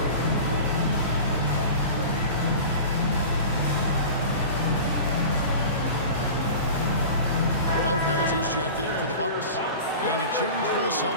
Checked in for the Bucks. And a change for the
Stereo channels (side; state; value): both; inverted; correlation -0.36